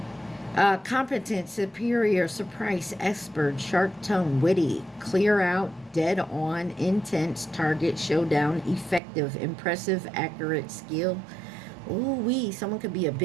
Competent, superior, surprise, expert, sharp tongue, witty, clear out, dead on, intense, target, showdown, effective, impressive, accurate, skill. Ooh-wee, someone could be a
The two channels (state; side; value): drops out; left; at 9.0 s